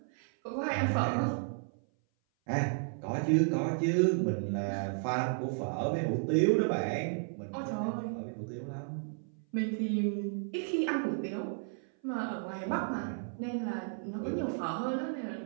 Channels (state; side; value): silent; left; 56 dB below the other